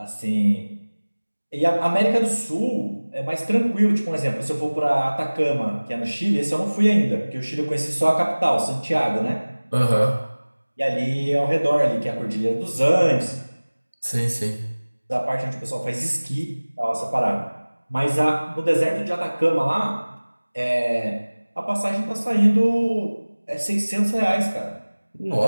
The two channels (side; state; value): both; inverted; correlation -1.00